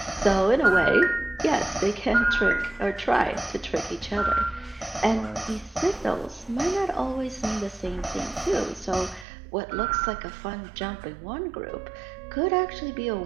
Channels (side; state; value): left; drops out; at 9.2 s